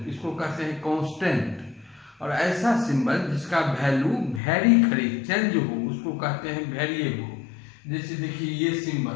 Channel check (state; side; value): drops out; right; at 4.4 s